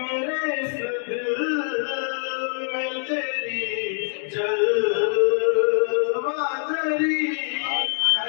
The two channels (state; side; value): silent; right; digital silence